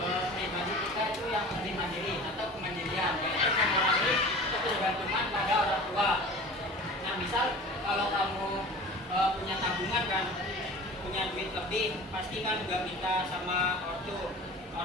pribadi kita itu yang lebih mandiri atau kemandirian, yaitu mengurangi ketergantungan pada orang tua. Nah, misal kalau kamu punya tabungan kan, punya duit lebih, pasti kan juga minta sama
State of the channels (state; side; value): normal; both; correlation 0.39